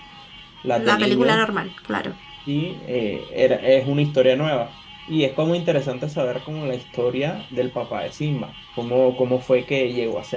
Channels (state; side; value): identical; both; correlation 1.00